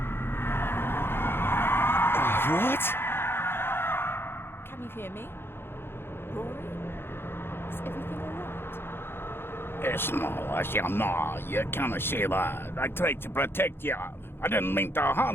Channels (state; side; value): late; right; 0.11 ms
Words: hear me? Rory? Is everything alright? It's no, you can't say that. I tried to protect you. I didn't mean to